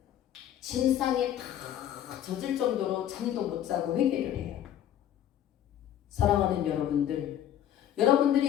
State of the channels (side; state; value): right; quieter; 11.1 dB